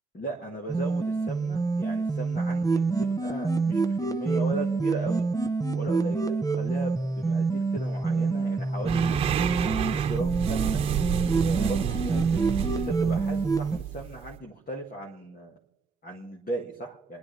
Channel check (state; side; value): quieter; left; 4.2 dB